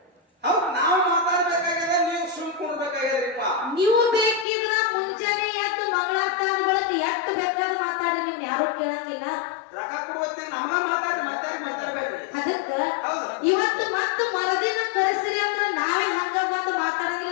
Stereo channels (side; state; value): right; drops out; at 4.5 s